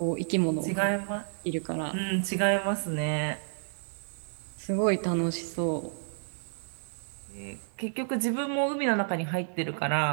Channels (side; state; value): left; silent; 58 dB below the other